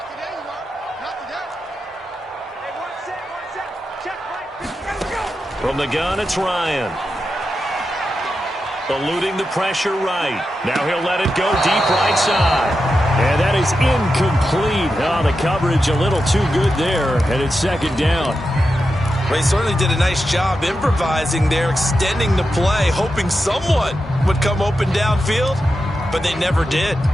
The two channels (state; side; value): normal; both; correlation 0.89